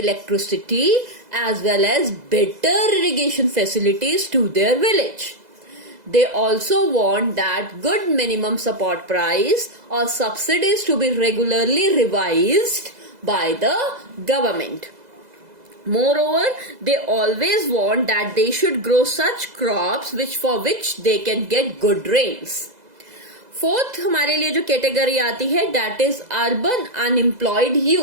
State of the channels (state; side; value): late; left; 2.0 ms